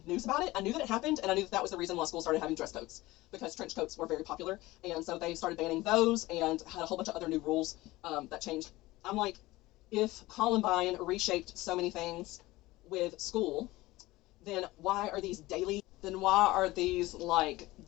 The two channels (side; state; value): right; quieter; 19.0 dB